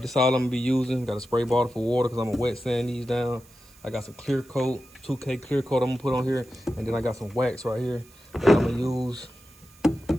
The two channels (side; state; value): right; noise; hiss, 26 dB below the sound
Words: This all I'm gonna be using. Got a spray bottle for water because I'm gonna wet sand these down. I got some clear coat, 2K clear coat I'm gonna put on here, and then I got some wax right here that I'm gonna use